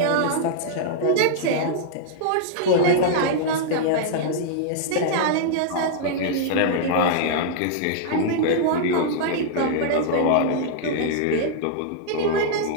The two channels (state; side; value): different; both; correlation -0.01